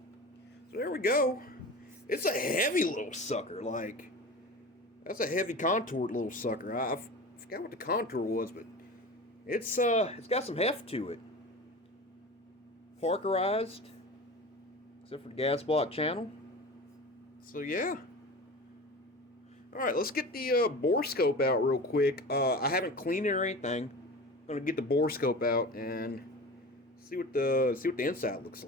So there we go. It's a heavy little sucker. Like, that's a heavy contoured little sucker. I forgot what the contour was, but it's got some heft to it. Parkerized, except for the gas block channel. So yeah. All right, let's get the bore scope out real quick. I haven't cleaned it or anything. I'm gonna get the bore scope out and see what the inside looks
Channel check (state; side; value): normal; both; correlation 0.33